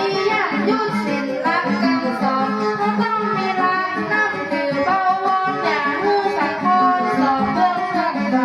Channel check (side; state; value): both; identical; correlation 1.00